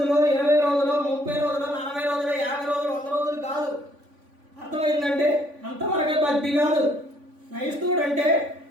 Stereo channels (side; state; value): left; late; 3.5 ms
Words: 20 రోజులు, 30 రోజులు, 40 రోజులు, 50 రోజులు, 100 రోజులు కాదు. అర్థమైందంటే అంతవరకే భక్తి కాదు. క్రైస్తవుడు అంటే